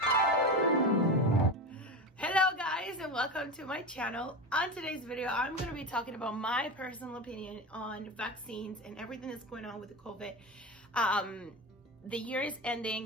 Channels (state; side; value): normal; both; correlation 0.23